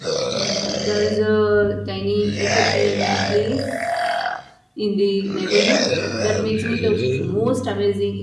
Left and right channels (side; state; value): both; identical; correlation 1.00